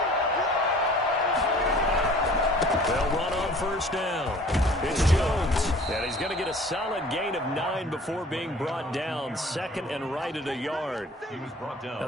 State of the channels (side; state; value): both; normal; correlation 0.49